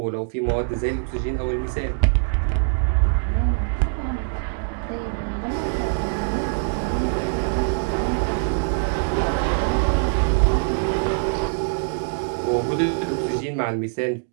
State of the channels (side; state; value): left; silent; 63 dB below the other